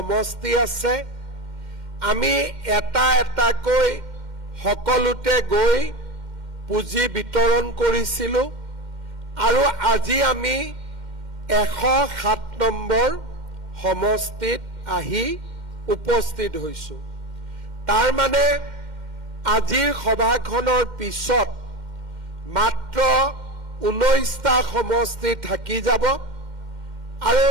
আছে আমি এটা এটাকৈ সকলোতে গৈ পুঁজি বিতৰণ কৰিছিলো আৰু আজি আমি 107 নম্বৰ সমষ্টিত আহি উপস্থিত হৈছো তাৰ মানে আজিৰ সভাখনৰ পিছত মাত্ৰ 19টা সমষ্টি থাকি যাব আৰু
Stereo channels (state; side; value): late; left; 2.1 ms